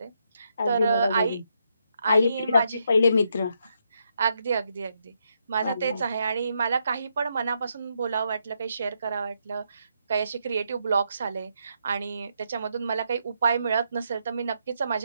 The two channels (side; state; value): both; inverted; correlation -0.79